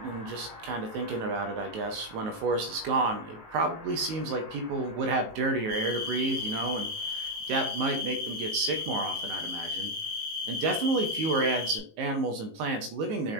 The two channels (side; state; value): left; late; 19 ms